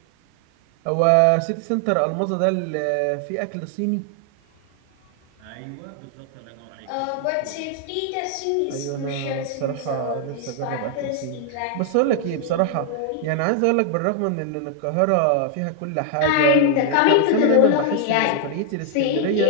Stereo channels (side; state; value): both; different; correlation 0.00